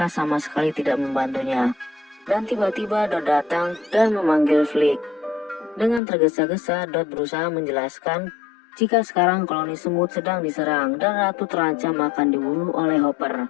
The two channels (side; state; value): right; drops out; at 6.0 s